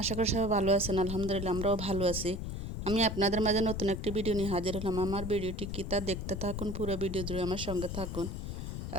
আশা করি সবাই ভালো আছেন। আলহামদুলিল্লাহ আমরাও ভালো আছি। আমি আপনাদের মাঝে নতুন একটি ভিডিও নিয়ে হাজির হলাম। আমার ভিডিওটি কি তা দেখতে থাকুন, পুরো ভিডিও জুড়ে আমার সঙ্গে থাকুন।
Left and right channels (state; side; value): noise; left; rumble, 5 dB below the sound